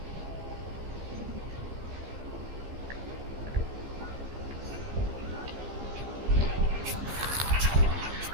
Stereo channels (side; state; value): left; late; 15 ms